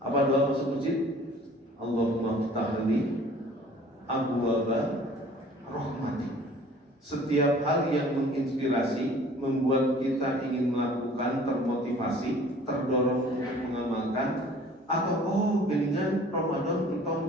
Apa doa masuk masjid? Allahumma ftahli abwaaba rahmatik. Setiap hal yang menginspirasi, membuat kita ingin melakukan, termotivasi, terdorong untuk mengamalkan, Atau geningan Ramadan entong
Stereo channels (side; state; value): both; normal; correlation 0.50